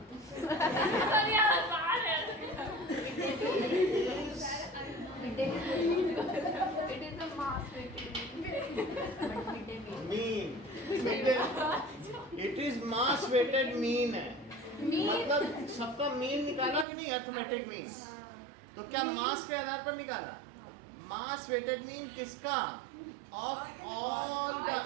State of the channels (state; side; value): drops out; left; at 16.9 s